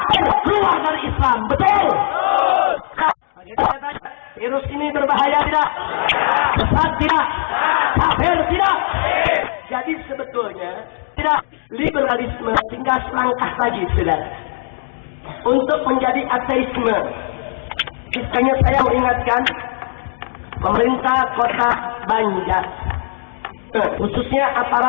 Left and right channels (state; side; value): silent; right; digital silence